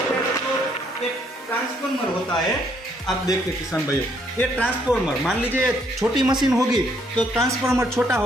पहले तो एक ट्रांसफॉर्मर होता है। आप देखिए किसान भाइयों, ये ट्रांसफॉर्मर, मान लीजिए छोटी मशीन होगी तो ट्रांसफॉर्मर छोटा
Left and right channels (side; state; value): both; normal; correlation 0.69